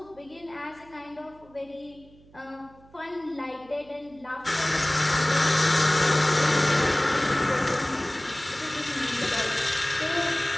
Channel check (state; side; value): noise; right; hum, 26 dB below the sound